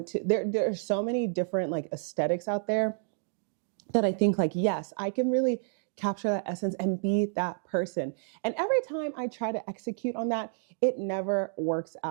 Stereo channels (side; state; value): left; silent; digital silence